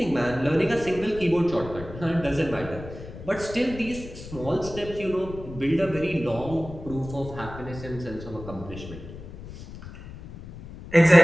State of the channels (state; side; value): noise; left; rumble, 13 dB below the sound